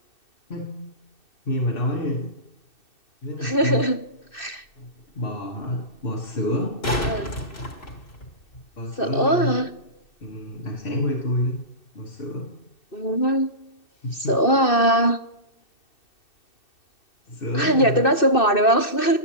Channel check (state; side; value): late; right; 2.6 ms